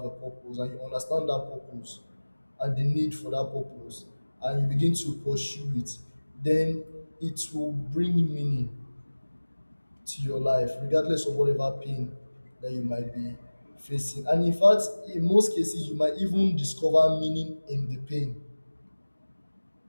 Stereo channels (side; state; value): both; inverted; correlation -1.00